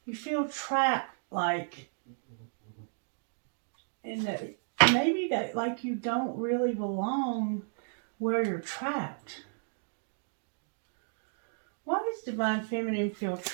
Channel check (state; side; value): silent; left; digital silence